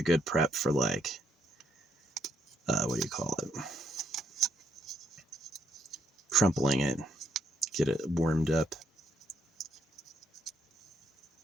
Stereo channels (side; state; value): both; normal; correlation 0.74